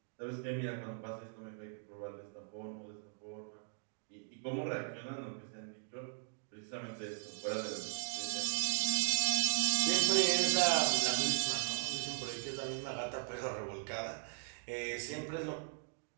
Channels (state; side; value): silent; left; digital silence